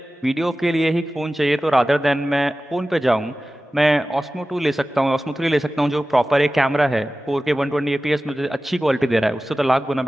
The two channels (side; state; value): both; normal; correlation 0.96